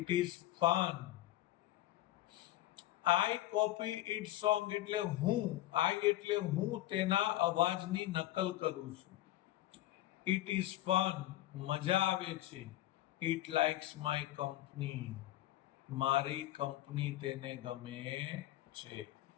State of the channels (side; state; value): right; quieter; 15.0 dB